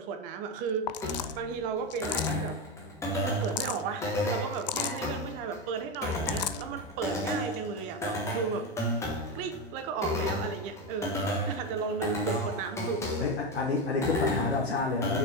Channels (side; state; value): both; normal; correlation 0.14